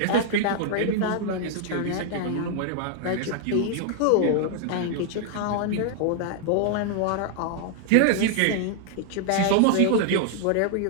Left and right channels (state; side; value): different; both; correlation 0.00